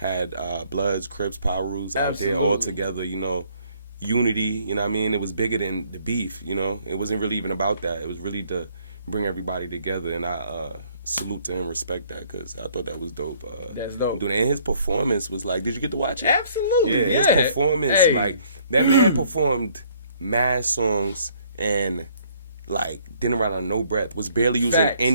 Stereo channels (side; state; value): both; inverted; correlation -0.62